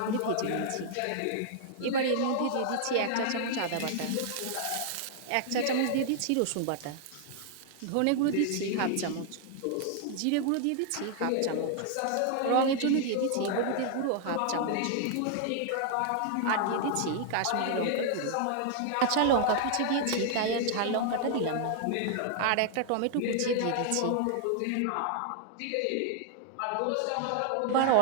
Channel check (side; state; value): both; different; correlation 0.00